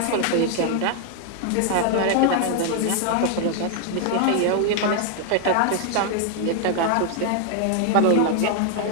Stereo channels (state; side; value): different; both; correlation 0.00